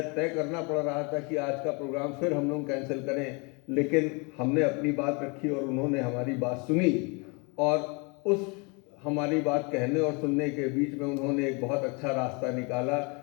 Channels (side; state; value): right; quieter; 31.0 dB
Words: तय करना पड़ रहा था कि आज का प्रोग्राम फिर हम लोग कैंसिल करें, लेकिन हमने अपनी बात रखी और उन्होंने हमारी बात सुनी और उस हमारी बात कहने और सुनने के बीच में उन्होंने एक बहुत अच्छा रास्ता निकाला